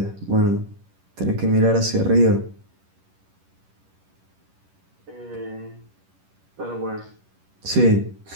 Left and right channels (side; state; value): left; late; 11 ms